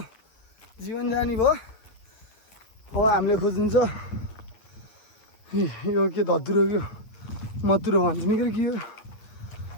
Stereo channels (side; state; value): right; late; 9.2 ms